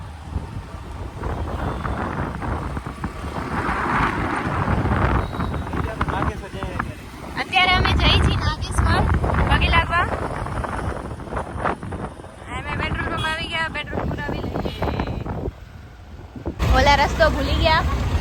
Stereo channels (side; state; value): both; identical; correlation 1.00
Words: અત્યારે અમે જઈ છીએ નાગેશ્વર પગે લાગવા. અમે પેટ્રોલ પંપ આવી ગયા, પેટ્રોલ પુરાવી લઈએ. ઓલા રસ્તો ભૂલી ગયા